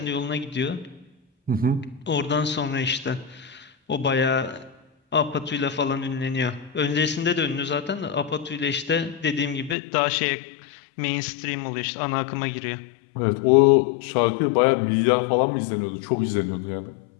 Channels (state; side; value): drops out; right; at 9.8 s